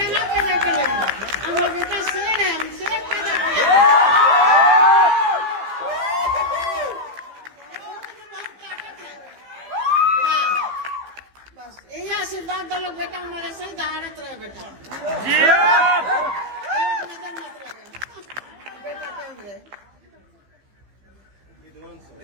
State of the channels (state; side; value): late; left; 15 ms